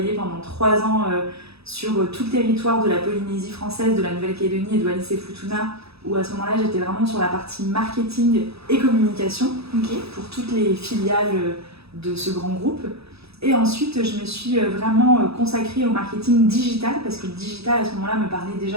pendant 3 ans sur tout le territoire de la Polynésie française, de la Nouvelle-Calédonie et de Wallis-et-Futuna, où à ce moment-là, j'étais vraiment sur la partie marketing et communication pour toutes les filiales de ce grand groupe. Et ensuite, je me suis vraiment consacrée au marketing digital, parce que le digital, à ce moment-là, me parlait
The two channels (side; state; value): left; late; 0.78 ms